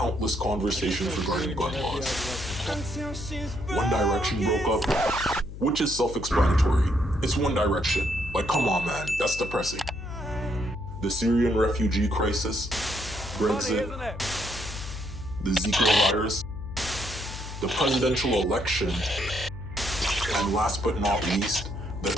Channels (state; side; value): noise; left; hum, 11 dB below the sound